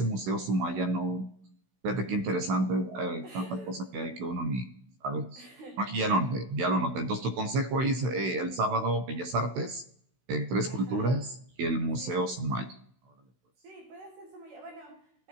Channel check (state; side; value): late; left; 16 ms